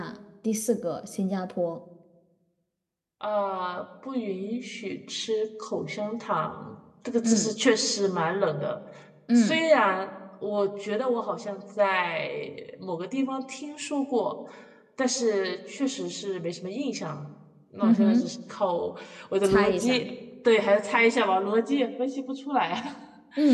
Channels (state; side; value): identical; both; correlation 1.00